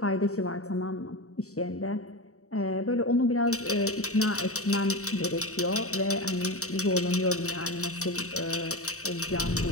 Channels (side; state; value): right; late; 0.64 ms